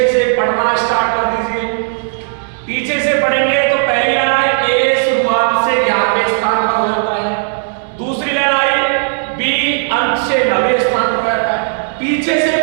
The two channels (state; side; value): silent; left; digital silence